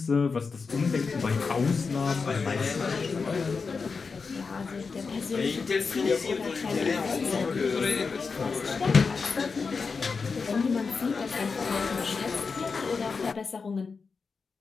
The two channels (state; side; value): quieter; right; 4.9 dB